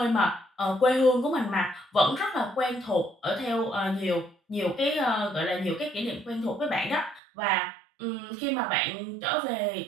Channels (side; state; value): left; drops out; at 7.2 s